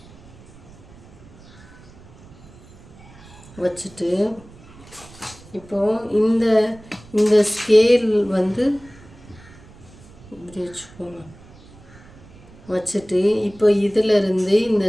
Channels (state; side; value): noise; right; rumble, 22 dB below the sound